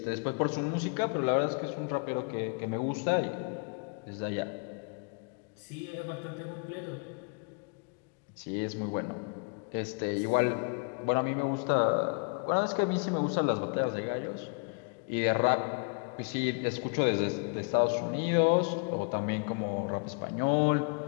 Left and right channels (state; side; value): quieter; right; 37.2 dB